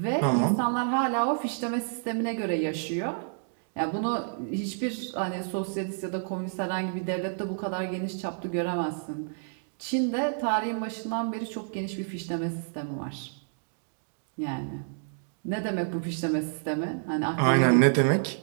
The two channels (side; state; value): left; silent; digital silence